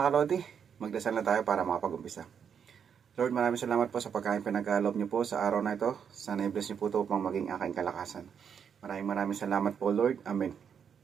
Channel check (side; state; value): left; quieter; 7.4 dB